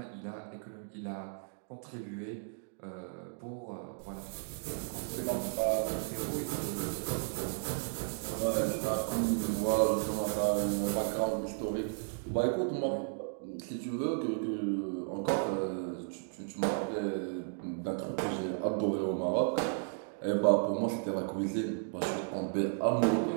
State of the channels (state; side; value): silent; left; digital silence